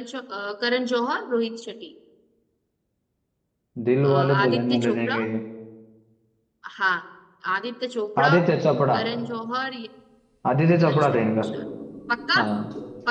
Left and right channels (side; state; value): both; identical; correlation 1.00